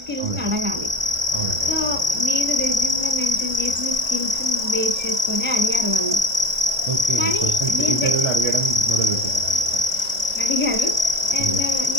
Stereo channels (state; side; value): late; left; 1.4 ms